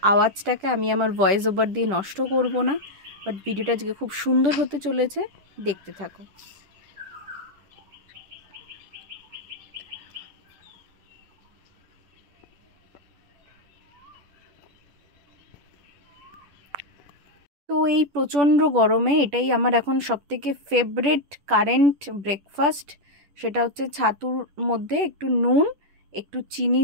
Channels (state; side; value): late; left; 10 ms